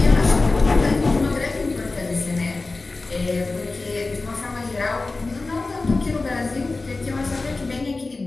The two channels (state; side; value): quieter; right; 3.5 dB